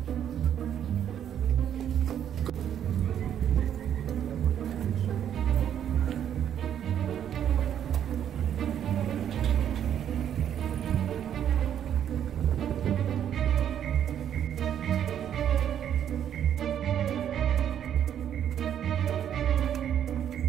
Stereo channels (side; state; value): left; quieter; 9.7 dB